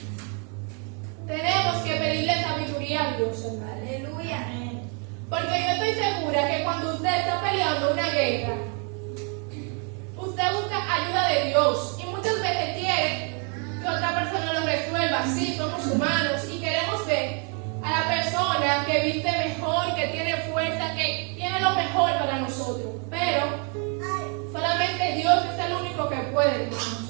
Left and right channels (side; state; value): left; quieter; 37.7 dB